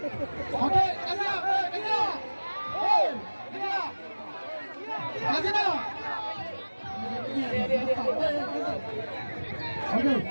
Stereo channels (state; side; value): inverted; both; correlation -1.00